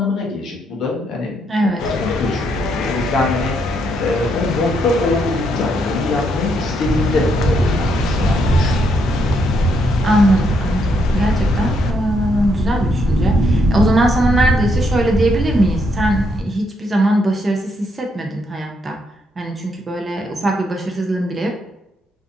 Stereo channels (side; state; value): both; normal; correlation 0.76